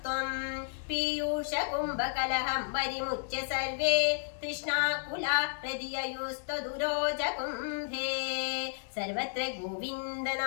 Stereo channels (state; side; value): silent; right; 56 dB below the other